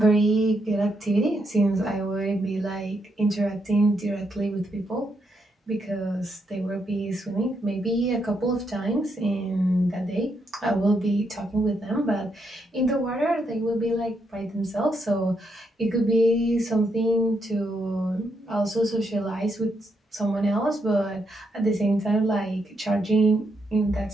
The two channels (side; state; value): both; normal; correlation 0.79